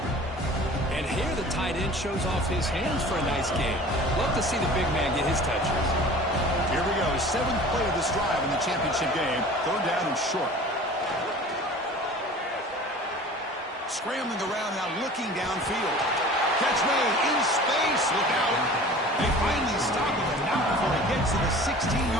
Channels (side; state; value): both; normal; correlation 0.43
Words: And here the tight end shows off his hands for a nice game. Love to see the big man get his touches. Here we go. 7th play of this drive in the championship game. 3rd down and short. Scrambling around now, looking downfield. Catch made in space. Look out. They finally stop him, but not before he gets to the